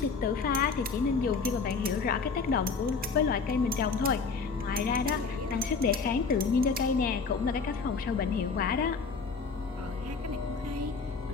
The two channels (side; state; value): right; quieter; 4.9 dB